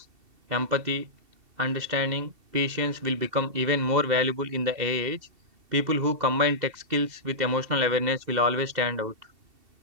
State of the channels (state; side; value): late; left; 2.7 ms